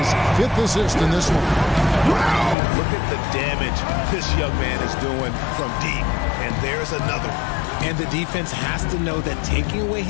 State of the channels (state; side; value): drops out; right; at 2.6 s